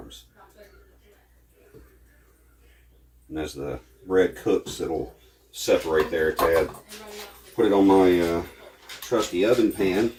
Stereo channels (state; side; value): identical; both; correlation 1.00